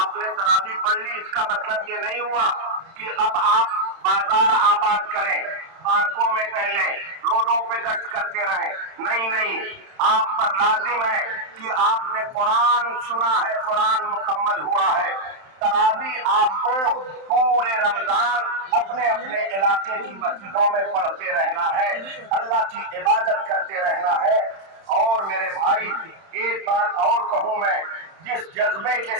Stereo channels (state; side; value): late; left; 31 ms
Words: نے تراویح پڑھ لی، اس کا مطلب یہ نہیں ہوا کہ اب آپ بازار آباد کریں، پارکوں میں ٹہلیں، روڈوں پہ گشت کرتے رہیں، نہیں، آپ پر لازم ہے کہ آپ نے قرآن سنا ہے، قرآن مکمل ہوا ہے۔ تراویح آپ کو پورے رمضان اپنے اپنے علاقے کی مسجدوں میں پڑھتے رہنا ہے، اللہ کی عبادت کرتے رہنا ہے۔ اور میرے بھائی، ایک بات اور کہوں میں، جس جذبے کے